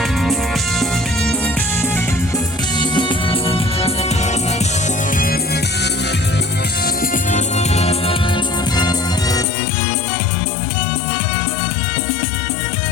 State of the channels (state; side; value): drops out; right; at 9.5 s